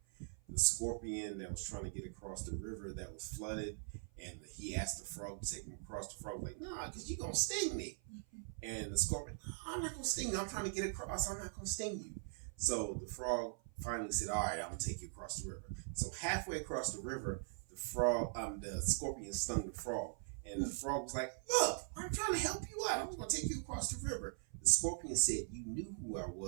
scorpion that was trying to get across the river that was flooded, and he asked the frog to take him across. The frog was like, "Nah, because you're gonna sting me." And the scorpion, "I'm not gonna sting you. I'm trying to get across. I'm not gonna sting you." So the frog finally said, "All right, I'm gonna take you across the river." So halfway across the river, the scorpion stung the frog, and the frog was like, "Look, I'm trying to help you out. I'm gonna take you across the river." The scorpion said, "You knew who I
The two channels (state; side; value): silent; left; 50 dB below the other